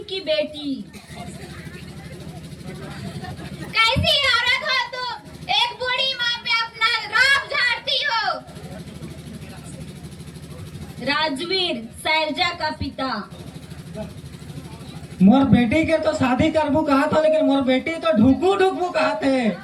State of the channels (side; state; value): both; identical; correlation 1.00